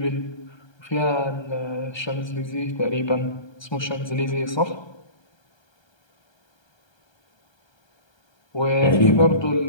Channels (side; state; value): right; late; 1.3 ms